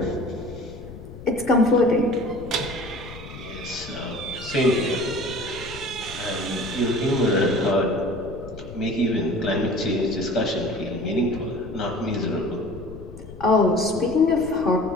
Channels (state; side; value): noise; left; rumble, 14 dB below the sound